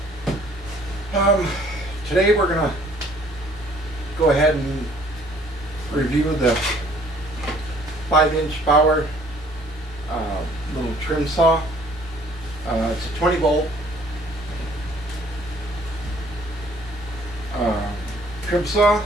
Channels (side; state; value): both; normal; correlation 0.58